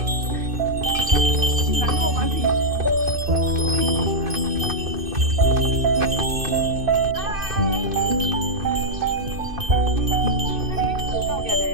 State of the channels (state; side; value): late; left; 2.5 ms